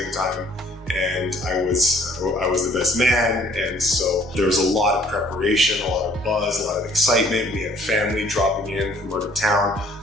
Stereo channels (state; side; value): normal; both; correlation 0.59